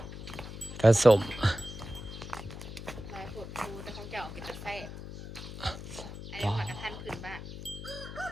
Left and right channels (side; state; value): left; noise; hum, 10 dB below the sound